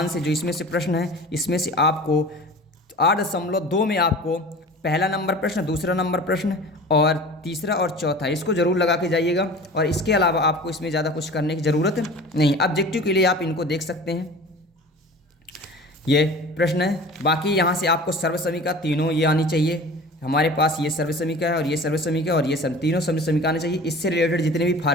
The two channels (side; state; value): both; normal; correlation 0.39